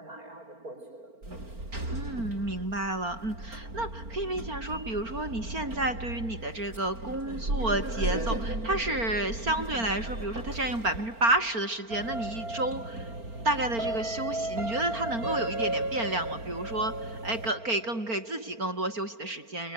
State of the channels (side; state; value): left; late; 4.4 ms